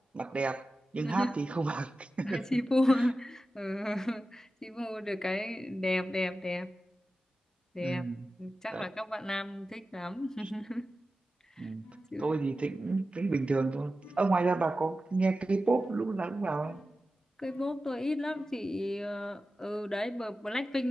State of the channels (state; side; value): normal; both; correlation 0.93